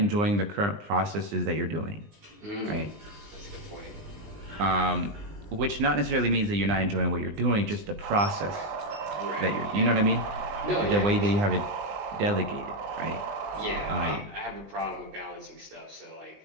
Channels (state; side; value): late; left; 20 ms